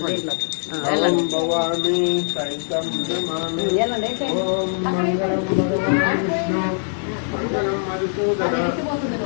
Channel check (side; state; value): right; silent; digital silence